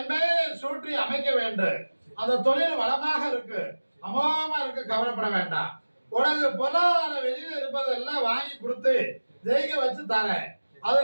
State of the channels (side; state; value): both; inverted; correlation -1.00